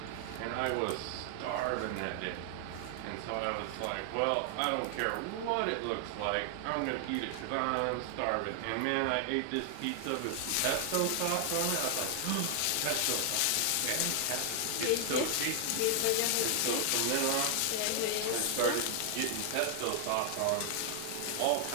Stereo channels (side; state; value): both; different; correlation 0.00